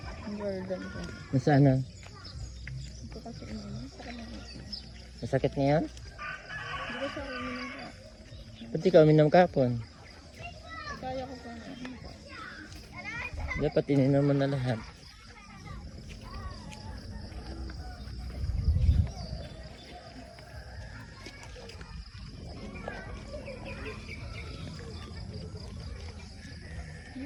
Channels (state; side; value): identical; both; correlation 1.00